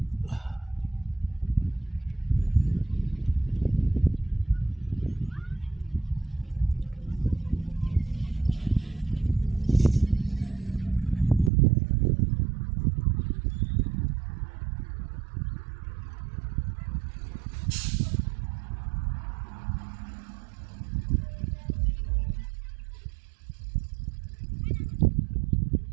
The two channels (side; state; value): left; drops out; at 11.5 s